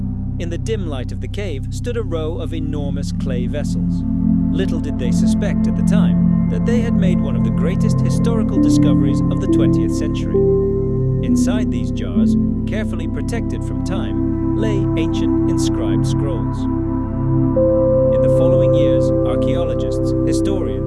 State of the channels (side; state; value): both; identical; correlation 1.00